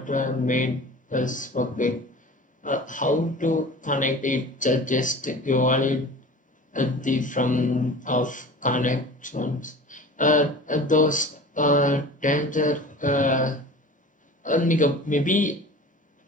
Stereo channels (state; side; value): normal; both; correlation 0.39